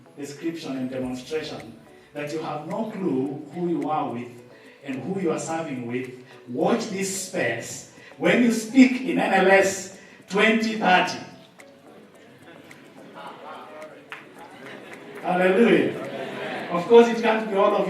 description and demonstration that you have no clue who you are with and who you are serving with? Watch this space. When you speak in NLS 2030, hallelujah. Of course, it can't be all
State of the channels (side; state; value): both; identical; correlation 1.00